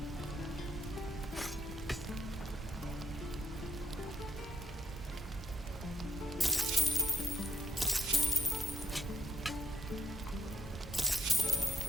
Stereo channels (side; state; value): both; normal; correlation 0.78